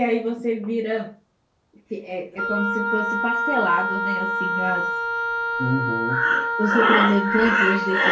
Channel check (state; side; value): identical; both; correlation 1.00